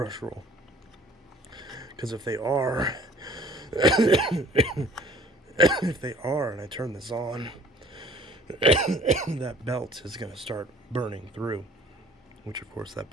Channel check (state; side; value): normal; both; correlation 0.54